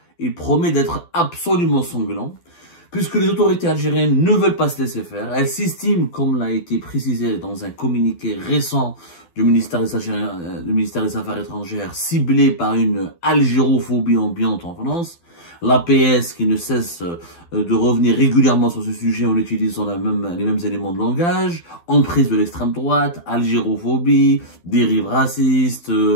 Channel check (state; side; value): late; right; 12 ms